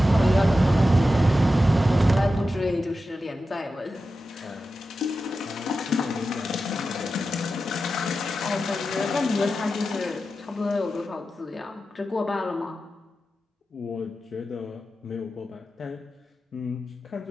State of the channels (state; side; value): normal; both; correlation 0.92